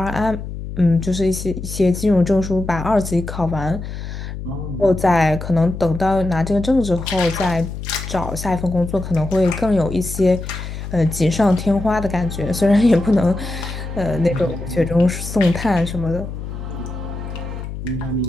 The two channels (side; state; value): left; noise; hum, 8 dB below the sound